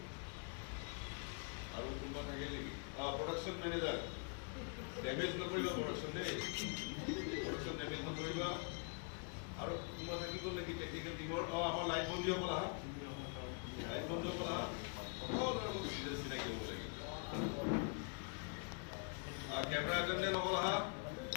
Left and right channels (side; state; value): right; quieter; 39.6 dB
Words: আৰু কোনোবা থাকে নেকি প্ৰডাকশ্যন মেনেজাৰ ডেমেজ নকৰিবা প্ৰডাকশ্যন দেই প্ৰডাকশ্যন ডেমেজ নকৰিবা আৰু কোনোবা থাকিব নেকি টেকনিকেল টিমৰ আমাৰ লাইট বন্ধীসকল আহা লাইট বন্ধীসকল আহা সকলো চিনাকি হ'ব লাগে কেমেৰা এটেণ্ডেণ্ট সকল আহা